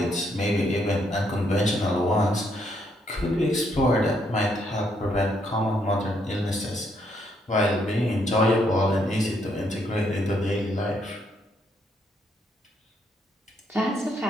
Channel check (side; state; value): both; normal; correlation 0.73